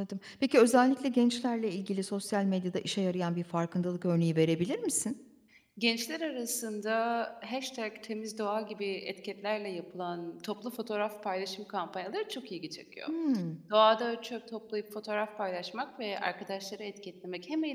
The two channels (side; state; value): both; identical; correlation 1.00